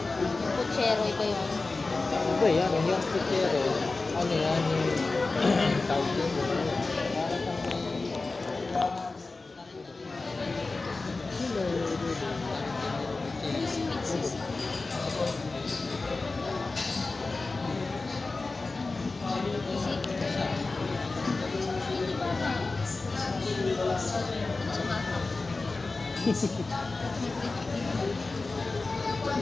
Yung kutsero, iba yun. Iba yan, yung kutsero. Ano yan, yung tawag yun.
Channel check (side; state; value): right; quieter; 3.6 dB